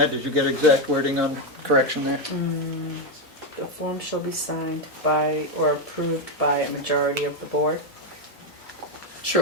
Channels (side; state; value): both; normal; correlation 0.06